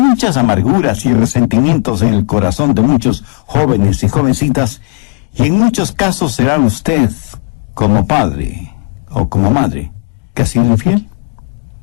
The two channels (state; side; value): quieter; right; 34.8 dB